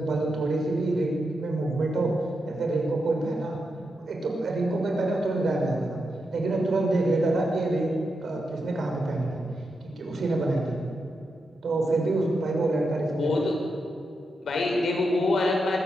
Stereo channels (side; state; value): both; normal; correlation 0.85